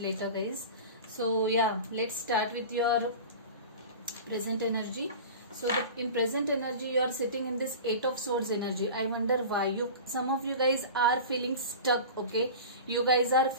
guys. So yeah, let's start with your present energy. So in present energy, you are sitting in this Eight of Swords energy. I wonder why some of you guys are feeling stuck, okay. You guys are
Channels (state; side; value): inverted; both; correlation -0.34